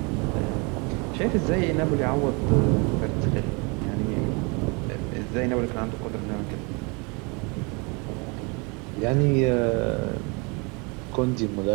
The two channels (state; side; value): quieter; left; 30.7 dB